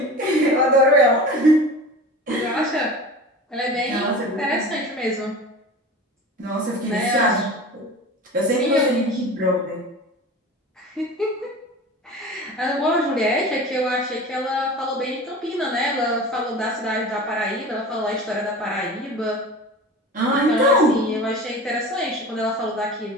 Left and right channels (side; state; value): both; normal; correlation 0.35